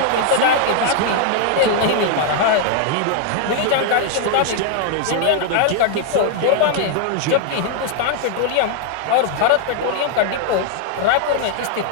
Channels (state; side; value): different; both; correlation -0.01